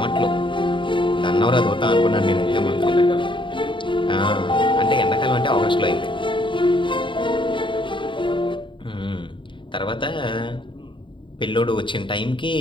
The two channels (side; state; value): right; late; 0.24 ms